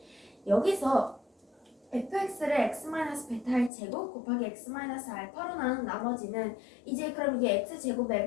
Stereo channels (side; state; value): right; drops out; at 3.7 s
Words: 여기서 fx를 x-베타의 제곱 곱하기 x-알파로 나눈 나머지는 이제 그럼 이게 x제곱에